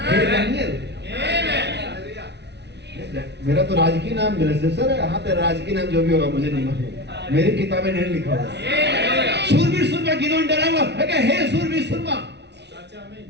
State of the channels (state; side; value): late; left; 0.50 ms